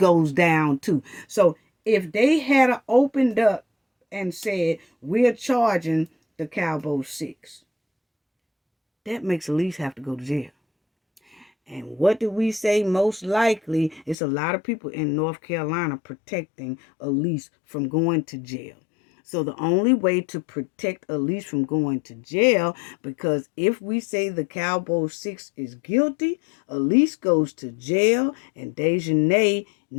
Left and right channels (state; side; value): drops out; right; at 14.2 s